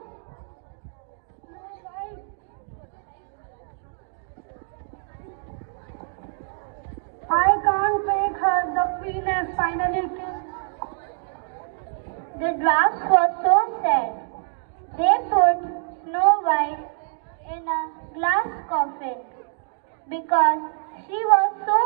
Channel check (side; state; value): left; silent; digital silence